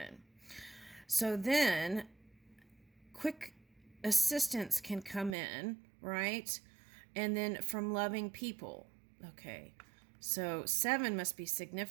So then quick assistance can come in, right? And then from loving people. Okay. So 7 must be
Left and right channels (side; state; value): left; drops out; at 5.4 s